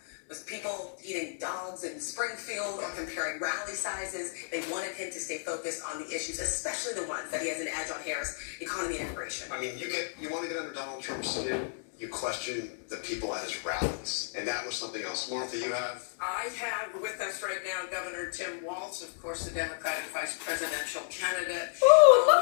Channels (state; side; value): silent; right; digital silence